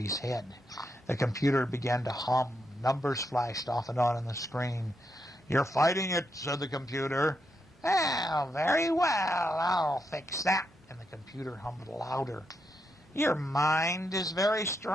head. The computer began to hum. Numbers flashed off and on the screen. You're fighting it, said the computer. Well, very well, I'll fix that. And the computer hummed louder. Your mind is very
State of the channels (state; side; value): normal; both; correlation 0.82